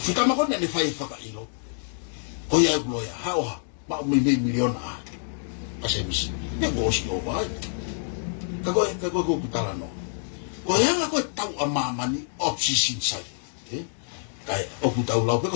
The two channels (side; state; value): right; silent; digital silence